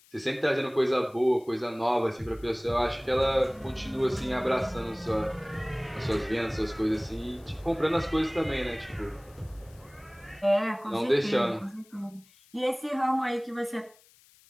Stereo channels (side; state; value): left; noise; hiss, 28 dB below the sound